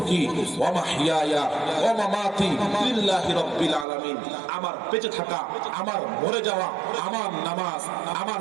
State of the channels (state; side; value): drops out; left; at 3.9 s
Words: ওয়া মাহইয়ায়া ওয়া মামাতি লিল্লাহি রাব্বিল আলামিন। আমার বেঁচে থাকা, আমার মরে যাওয়া, আমার নামাজ, আমার